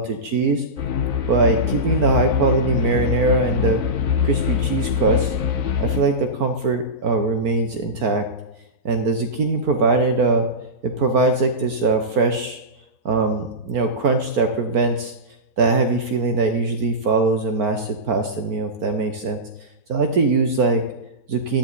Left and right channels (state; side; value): late; left; 4.5 ms